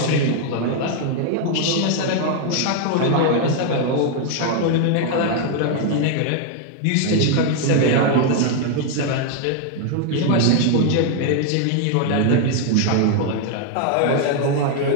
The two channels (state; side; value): different; both; correlation 0.00